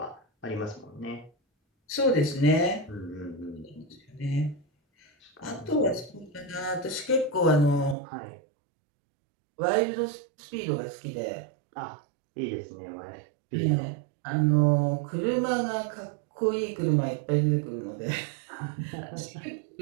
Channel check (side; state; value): left; drops out; at 8.0 s